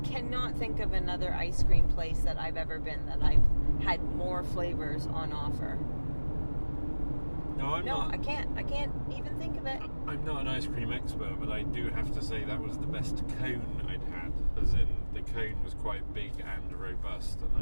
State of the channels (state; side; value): inverted; both; correlation -1.00